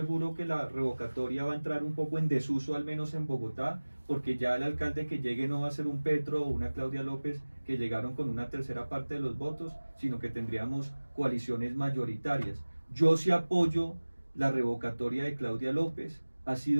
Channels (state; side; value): inverted; both; correlation -1.00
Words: que la revocatoria va a entrar un poco en desuso, al menos en Bogotá, porque ya el alcalde que llegue no va a ser un Petro o una Claudia López que llegaron con una tercera parte de los votos, sino que tendríamos coaliciones mayoritarias. Yo sí apoyo la revocatoria de Claudia López. Ha